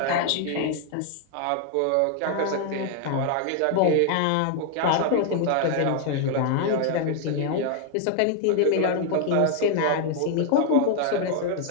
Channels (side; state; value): both; different; correlation 0.00